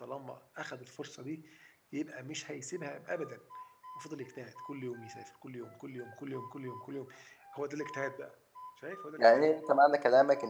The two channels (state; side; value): identical; both; correlation 1.00